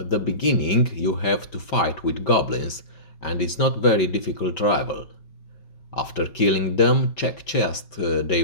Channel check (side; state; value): right; late; 5.2 ms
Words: the beginning, you have to fight with goblins, and it's not very difficult rival. After killing them, check chest they